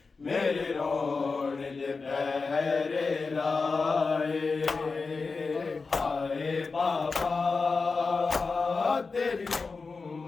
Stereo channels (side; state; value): right; quieter; 4.4 dB